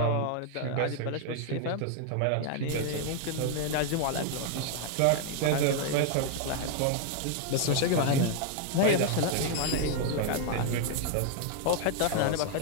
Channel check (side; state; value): both; different; correlation 0.00